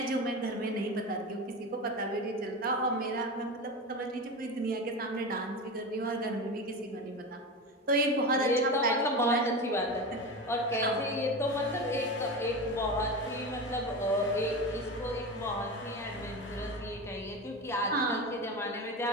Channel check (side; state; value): both; normal; correlation 0.24